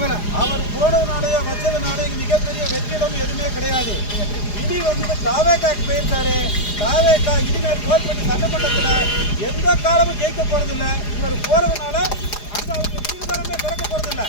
அவர் போனதுனாலேயோ வச்சதுனால மிகப்பெரிய வெற்றிடம் எதுவுமே கிடையாது. இடி தாவேக்காக்கு போயிருக்காரு. தாவேக்கா இனிமேல் கோல்பட்டி சட்டமன்றத்தில் எந்த காலமும் ஜெயிக்க போறதில்லை. இவர் போறதுனால அங்க அவருக்கு தீவிரமே திறக்க போறதில்லை.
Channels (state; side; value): late; right; 4.9 ms